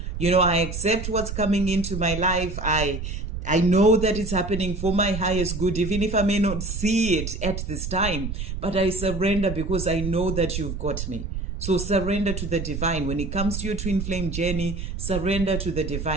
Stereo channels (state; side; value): noise; right; rumble, 6 dB below the sound